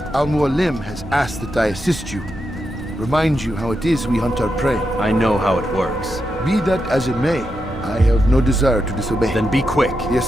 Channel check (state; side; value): normal; both; correlation 0.86